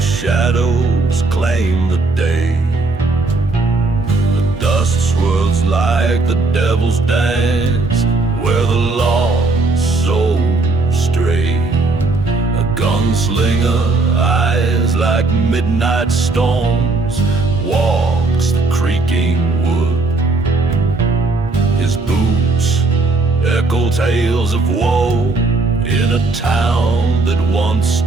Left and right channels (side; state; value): left; quieter; 3.4 dB